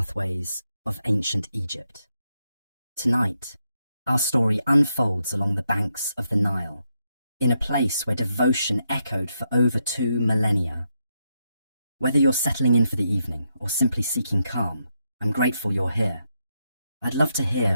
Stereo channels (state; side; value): inverted; both; correlation -0.82